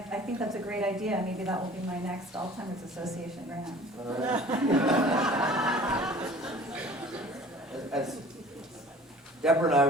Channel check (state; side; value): normal; both; correlation 0.47